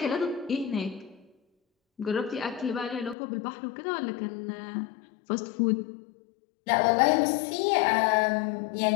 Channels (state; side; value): drops out; right; at 3.2 s